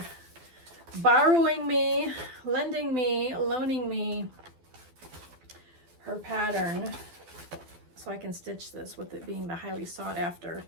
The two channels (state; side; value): late; left; 12 ms